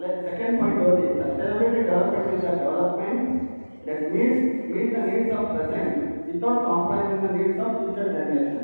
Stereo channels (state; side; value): inverted; both; correlation -1.00